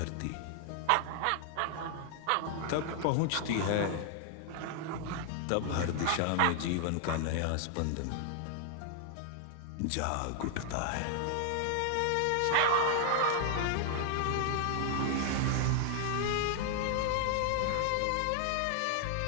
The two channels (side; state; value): both; different; correlation 0.00